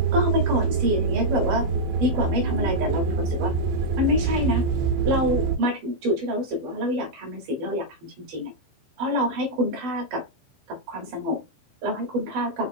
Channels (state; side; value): late; left; 12 ms